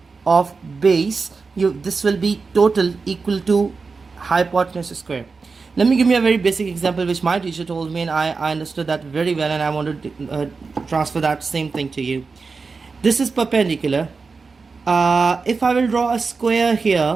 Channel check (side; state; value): left; quieter; 4.6 dB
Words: of base, this will be total equal to hypotenuse square. Let me give you a very basic example which my teacher told me, and I understood that very well, and I want to transfer that same thing to you. This is perpendicular. If I will draw a square